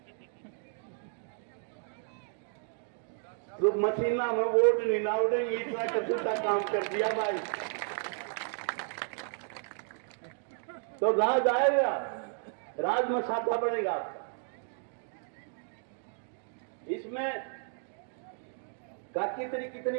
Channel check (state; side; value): silent; left; 56 dB below the other